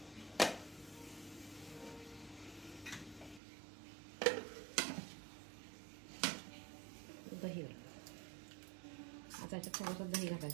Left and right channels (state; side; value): drops out; left; at 3.4 s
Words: दही आता याच्यात थोडंसं दही